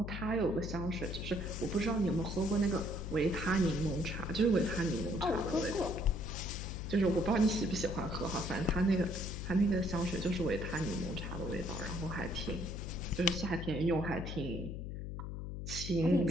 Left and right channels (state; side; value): noise; left; hum, 6 dB below the sound